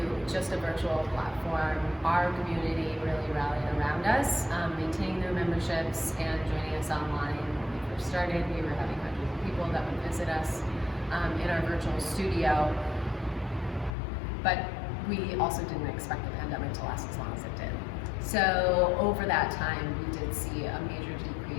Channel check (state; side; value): drops out; right; at 13.9 s